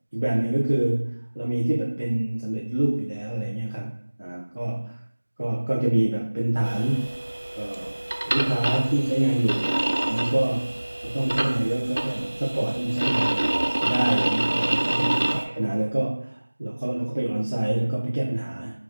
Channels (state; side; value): inverted; both; correlation -1.00